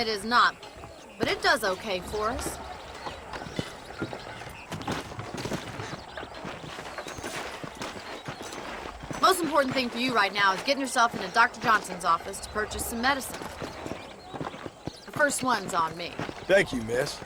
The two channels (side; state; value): both; identical; correlation 1.00